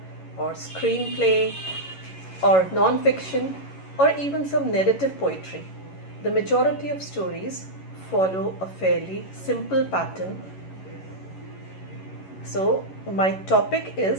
or screenplay, or non-fiction, or even some narrative poetry, the majority of stories follow a fairly simple pattern. So my topic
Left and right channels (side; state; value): right; late; 11 ms